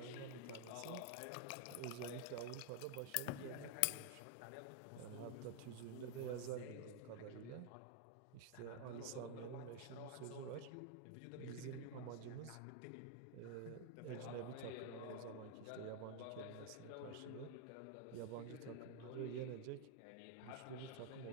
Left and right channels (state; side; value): different; both; correlation 0.00